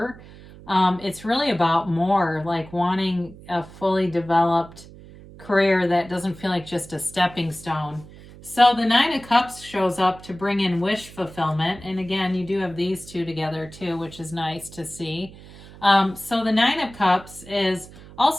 It's really about more, like wanting a fully developed career that doesn't feel like just a stepping stone. So the 9 of Cups shows up to bring in wish fulfillment. And again, you do have these two together too, which is nice to see. So the 9 of Cups is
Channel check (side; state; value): right; noise; hum, 19 dB below the sound